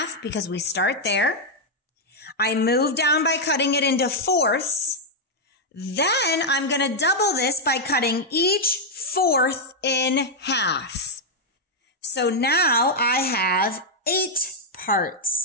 because we start there. I move down by cutting it into fourths. Then I'm going to double this by cutting each fourth in half. So now I have 8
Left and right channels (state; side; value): normal; both; correlation -0.02